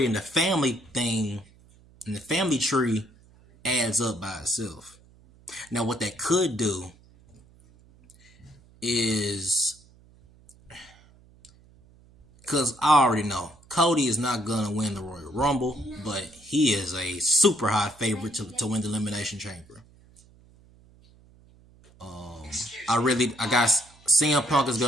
the family thing and the family tree adds up by itself. Now, what that could do is, because I already know Cody is not going to win the Royal Rumble, but he is a super high favorite to win the Elimination Chamber. I got CM Punk is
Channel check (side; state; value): right; noise; hum, 27 dB below the sound